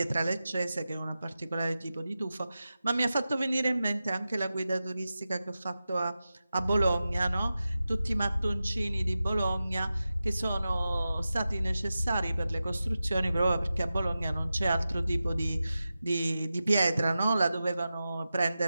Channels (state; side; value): inverted; both; correlation -0.93